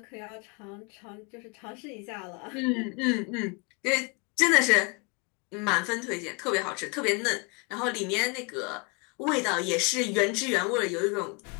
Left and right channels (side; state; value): right; quieter; 30.5 dB